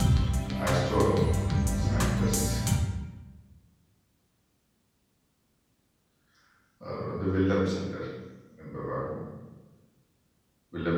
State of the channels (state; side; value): identical; both; correlation 1.00